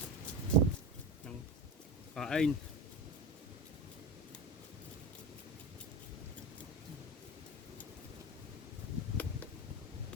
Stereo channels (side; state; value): both; normal; correlation 0.24